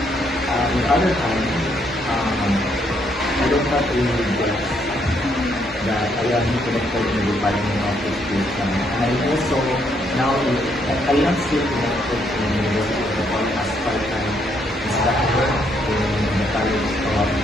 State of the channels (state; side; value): normal; both; correlation 0.72